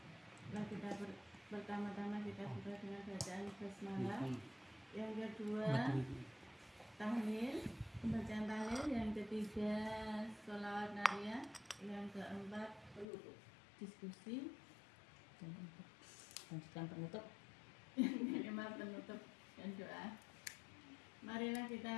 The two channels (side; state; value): right; drops out; at 13.1 s